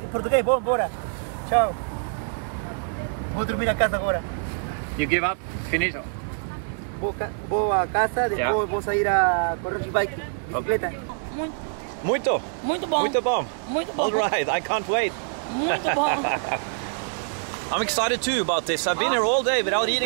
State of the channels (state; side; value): silent; left; 62 dB below the other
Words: português, vou embora. Tchau. Vou dormir na casa agora. You give up? Finito. Vou à casa, depois Yeah. vou sair a correr de bike, bicicleta. Muito. Muito bom. Muito bom. Muito bom. All right, I can't wait. Muito bom. I'm excited too about this. I've been here all day without